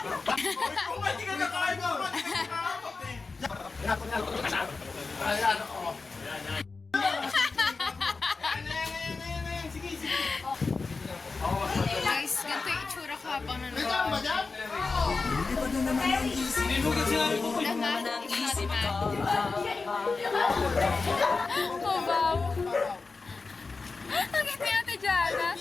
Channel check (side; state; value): right; quieter; 4.1 dB